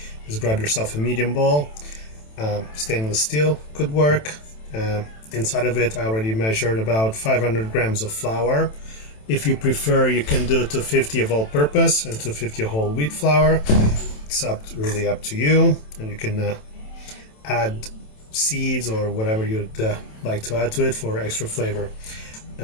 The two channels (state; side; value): late; right; 27 ms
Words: is grab yourself a medium bowl. Stainless steel could work. Inside of it, I already measured about 500 grams of flour. If you prefer, you can do 250 of all-purpose and 250 whole wheat flour. It's really up to you, and you can add seeds or whatever you'd like to add to it for extra flavor.